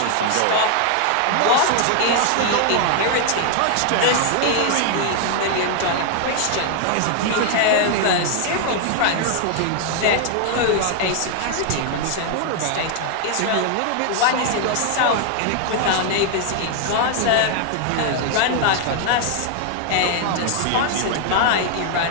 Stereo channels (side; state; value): both; different; correlation 0.00